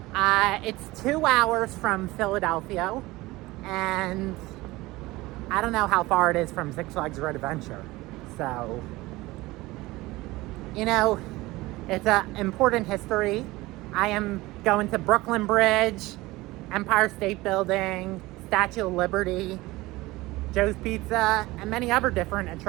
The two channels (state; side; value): quieter; left; 19.9 dB